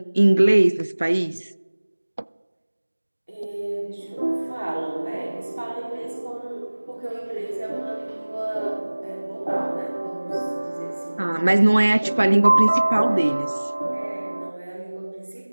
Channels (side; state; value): both; inverted; correlation -1.00